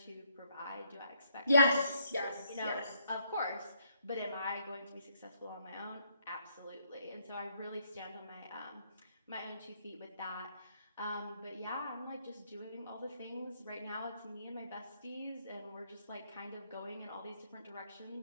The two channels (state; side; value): inverted; both; correlation -0.71